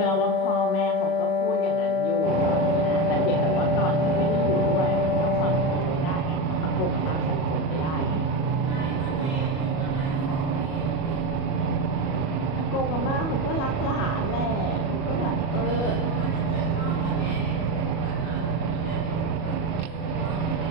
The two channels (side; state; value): right; late; 37 ms